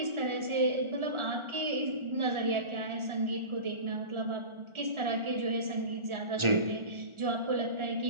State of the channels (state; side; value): late; left; 1.4 ms